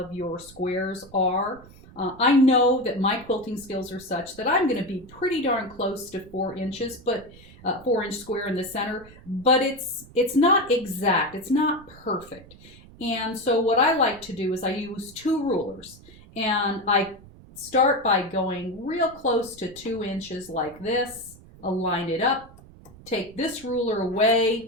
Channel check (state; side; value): noise; right; rumble, 21 dB below the sound